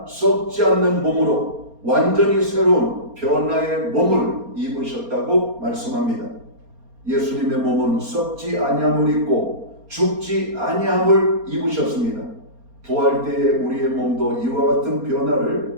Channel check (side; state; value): left; late; 4.3 ms